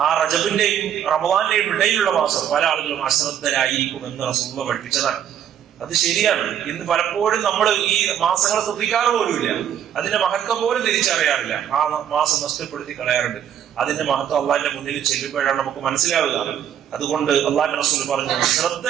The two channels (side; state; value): left; quieter; 9.6 dB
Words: ആ റജബിന്റെയും റമദാന്റെയും ഇടയിലുള്ള മാസം പല ആളുകളും അശ്രദ്ധരായിരിക്കും എന്ന് റസൂലുള്ളാഹി പഠിപ്പിച്ചതാണ്. അത് ശരിയാണ്. ഇന്ന് പലപ്പോഴും നമ്മൾ ഈ മാസങ്ങളെ ശ്രദ്ധിക്കാറ് പോലുമില്ല, അതിന്റെ മഹത്വം പോലും തിരിച്ചറിയാറില്ല. ആ മാസം നഷ്ടപ്പെടുത്തി കളയാറുണ്ട്. അതിന്റെ മഹത്വം അള്ളാഹിന്റെ മുന്നിൽ ചെല്ലുമ്പോഴാണ് നമുക്ക് മനസ്സിലാവുക. അതുകൊണ്ട് അള്ളാഹിന്റെ റസൂൽ പറഞ്ഞു,